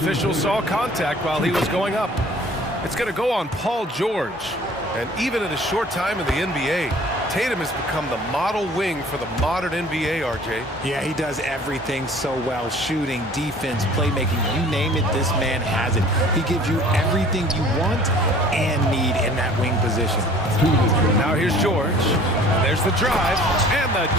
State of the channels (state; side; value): normal; both; correlation 0.50